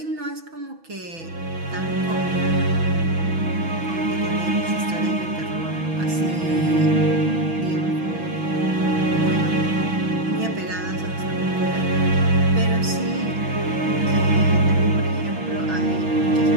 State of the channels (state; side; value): late; left; 6.1 ms